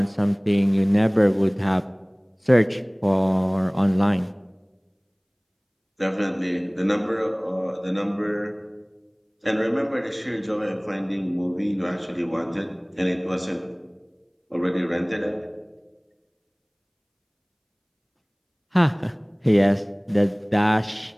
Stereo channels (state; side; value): identical; both; correlation 1.00